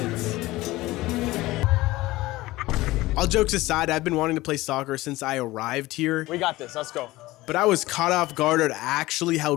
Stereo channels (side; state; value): right; quieter; 18.6 dB